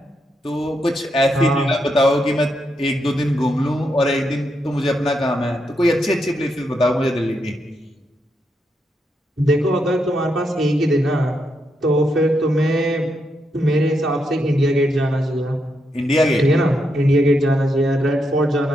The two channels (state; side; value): normal; both; correlation 0.81